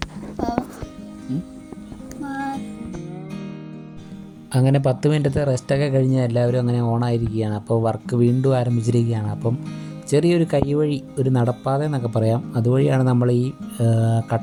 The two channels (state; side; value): identical; both; correlation 1.00